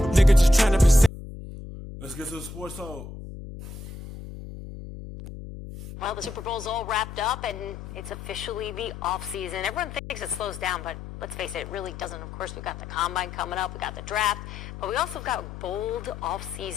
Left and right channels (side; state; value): left; noise; hum, 11 dB below the sound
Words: Nigga just tryna be safe. Let's get to the sports talk. Well, the Super Bowl's all wrapped up, and it's officially the offseason. Everyone thinks it slows down, but let's face it, it really doesn't. Of course, we've got the Combine coming up, we got the draft, but we also got bold